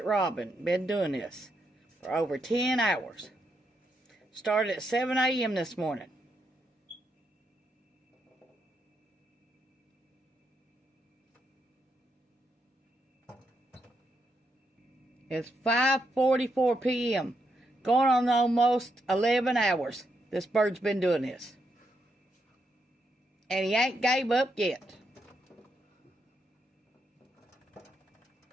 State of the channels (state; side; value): normal; both; correlation 0.81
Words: robin been doing this for over 10 hours. Started at 7 a.m. this morning. It's 5:44 p.m. Going on almost 11 hours. This bird's been doing this. And he ain't gave up yet.